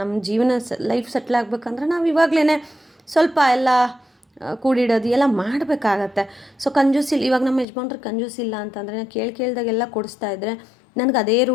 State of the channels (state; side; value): drops out; right; at 7.7 s